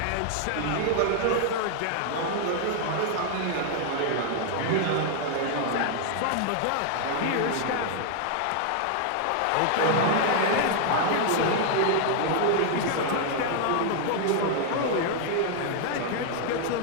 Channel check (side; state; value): both; different; correlation 0.00